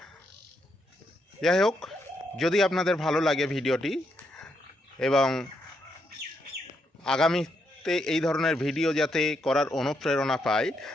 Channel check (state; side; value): normal; both; correlation 0.79